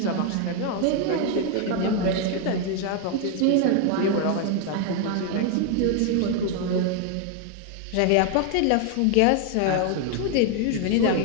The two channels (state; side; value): different; both; correlation 0.00